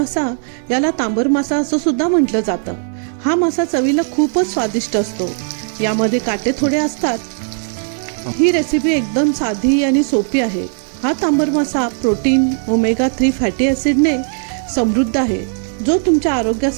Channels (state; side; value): silent; left; 66 dB below the other